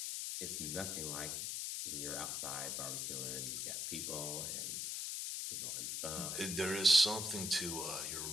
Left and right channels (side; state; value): left; noise; hiss, 1 dB below the sound